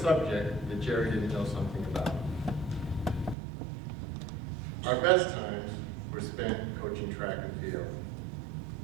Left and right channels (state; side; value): drops out; left; at 3.4 s